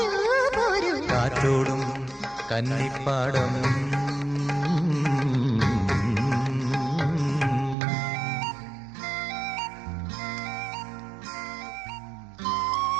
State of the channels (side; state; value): left; drops out; at 7.8 s